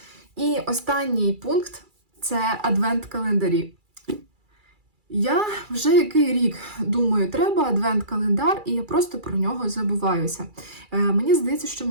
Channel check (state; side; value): late; left; 2.3 ms